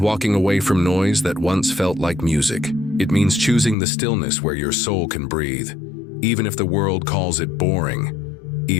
away from noise that once felt like music. It means choosing the stillness where your soul can breathe. Even if the world calls it boring,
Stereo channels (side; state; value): right; drops out; at 3.8 s